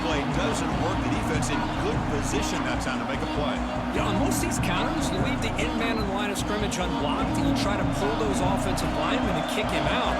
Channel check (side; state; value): both; identical; correlation 1.00